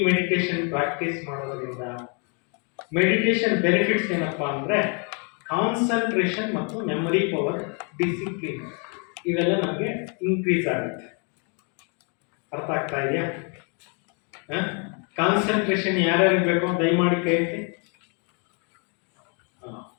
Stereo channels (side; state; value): right; quieter; 37.2 dB